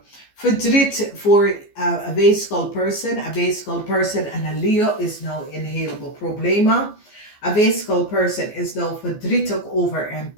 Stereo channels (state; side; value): late; right; 14 ms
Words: Verdriet voor a physical person. A physical person en een Leo is nou een heleboel problemen. A physical person is nou verdrietig over een